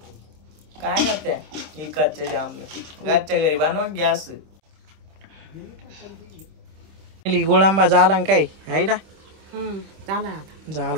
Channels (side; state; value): left; late; 26 ms